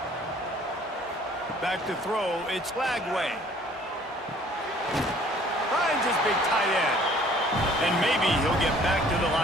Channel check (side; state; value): both; normal; correlation 0.56